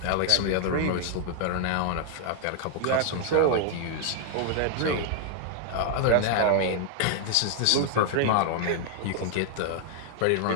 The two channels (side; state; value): both; different; correlation 0.00